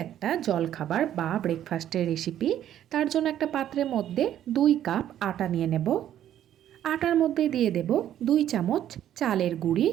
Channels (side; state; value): left; quieter; 11.2 dB